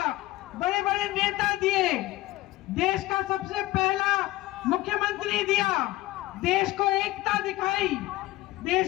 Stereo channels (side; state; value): right; quieter; 17.8 dB